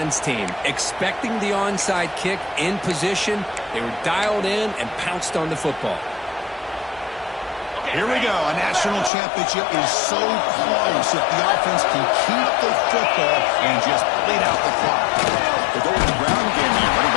team. Expecting the onside kick in position. They were dialed in and pounced on the football. Here we go. A national championship is so close if the offense can keep the football and just bleed out the clock. The golden ground game here. Running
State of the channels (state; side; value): drops out; right; at 9.1 s